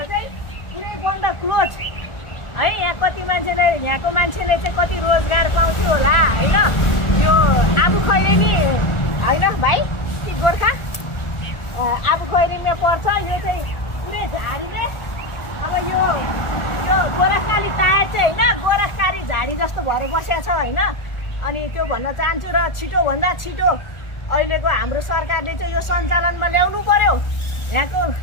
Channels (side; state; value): right; late; 1.4 ms